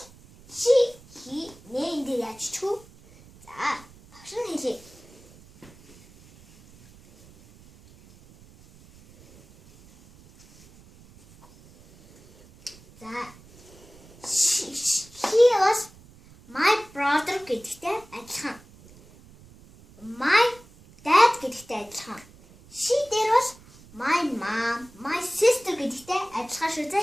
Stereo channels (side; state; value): right; noise; rumble, 24 dB below the sound